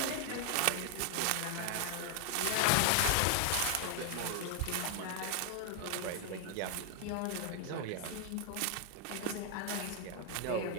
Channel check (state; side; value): different; both; correlation 0.00